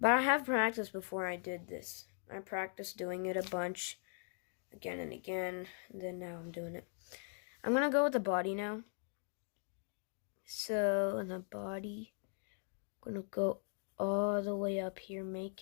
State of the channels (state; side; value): silent; right; 51 dB below the other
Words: I have practiced before I did this. I practiced doing it a bunch, again and again, and then now I'm doing it. I'm gonna go with the body now. So in the body, I'm gonna go all the way up here,